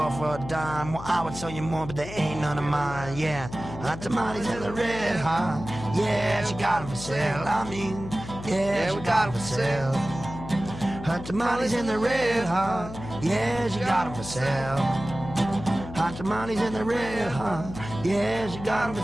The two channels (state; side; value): noise; left; hum, 11 dB below the sound